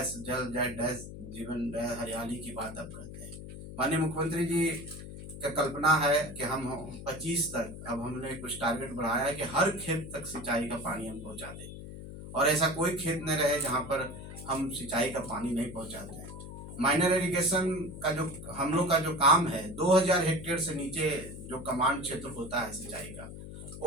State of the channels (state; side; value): noise; left; hum, 11 dB below the sound